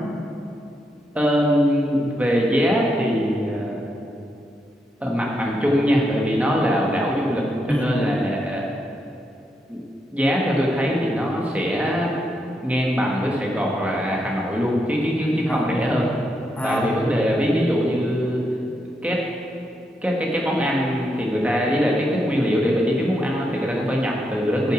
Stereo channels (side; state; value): both; normal; correlation 0.81